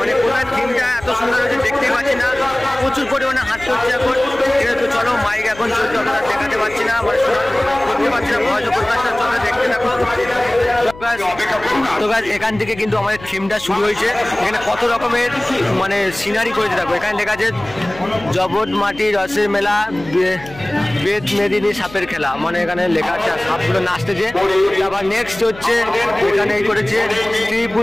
কোথায় থিমটা এত সুন্দর হয়েছে দেখতেই পাচ্ছি না। প্রচুর পরিমাণে হাঁটতে হচ্ছে এখন। ঠিক আছে, তো চলো মাইক এখন চলছে, আমরা দেখাতে পারছি না, মানে করতে পারছি না, ভয় প্রকাশটা চলে দেখতে থাকো। তো গাছ এখান থেকে কিন্তু আমাদের থিমটা শুরু হয়েছে। এখানে কত রকমের মানে সিনারি করেছে দেখো। এখানে লেখা আছে জবট মাটি রসের মেলা, বেদ মেদিনী সাপের খেলা, মানে এখানে লেখা আছে সাপগুলো নাচতেছে। তারপর নেক্সট হচ্ছে এখানে এই করেছে স্ত্রী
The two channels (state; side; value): noise; left; hum, 18 dB below the sound